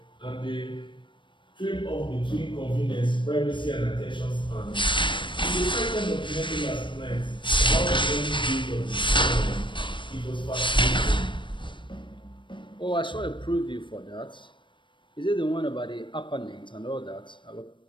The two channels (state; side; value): late; right; 0.23 ms